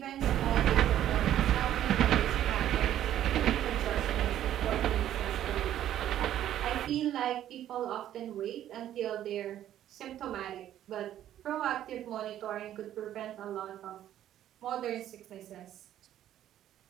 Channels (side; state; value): left; quieter; 11.7 dB